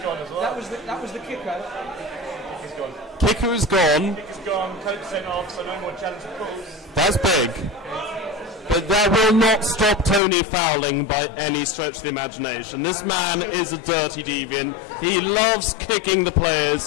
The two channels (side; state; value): right; drops out; at 10.2 s